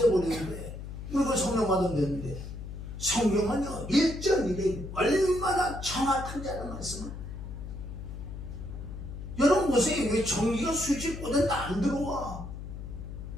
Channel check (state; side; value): noise; left; hum, 9 dB below the sound